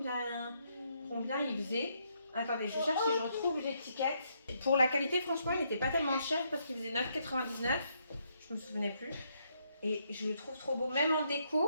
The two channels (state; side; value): inverted; both; correlation -0.75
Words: il faisait. Attendez, je cherche si je retrouve l'étiquette. Pour la qualité, franchement, il n'était pas tellement cher parce qu'il faisait 9,99. Je me souvenais plus. Et je le trouve trop beau, même en